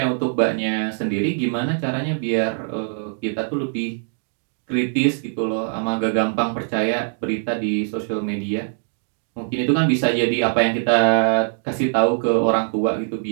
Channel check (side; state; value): left; silent; digital silence